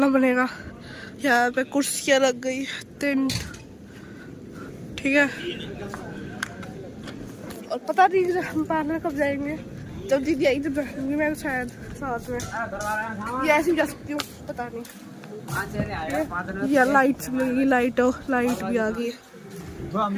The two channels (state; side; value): identical; both; correlation 1.00